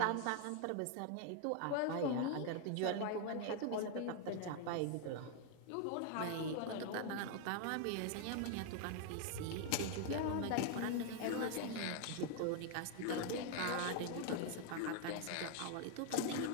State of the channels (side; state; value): both; different; correlation 0.00